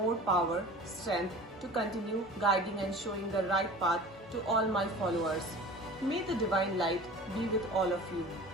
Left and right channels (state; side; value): normal; both; correlation 0.40